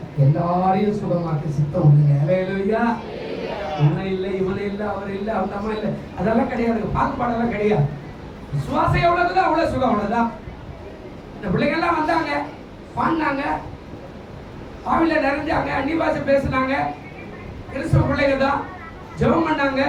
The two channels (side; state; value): both; identical; correlation 1.00